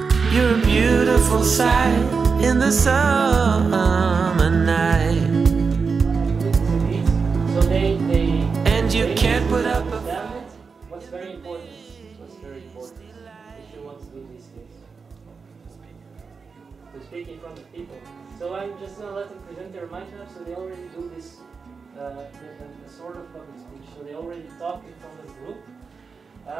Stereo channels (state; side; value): quieter; left; 5.1 dB